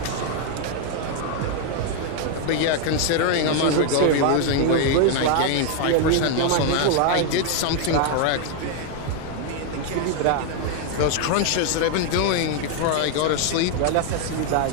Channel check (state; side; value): different; both; correlation 0.00